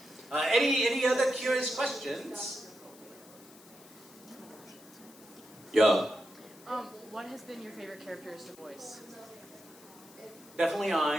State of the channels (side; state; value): left; noise; hiss, 22 dB below the sound